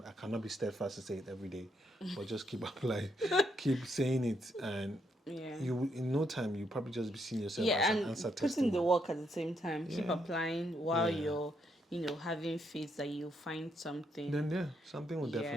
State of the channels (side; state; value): both; normal; correlation 0.77